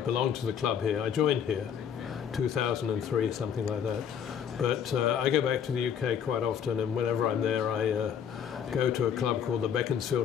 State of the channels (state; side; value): quieter; right; 8.2 dB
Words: belong to the club here. I joined here 2003, something like that. But I go back to the UK quite often, and whenever I'm there, I go to a club called the